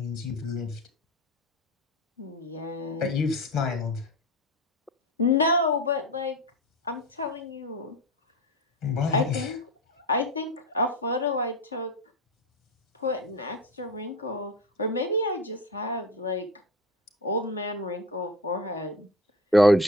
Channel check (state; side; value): normal; both; correlation 0.27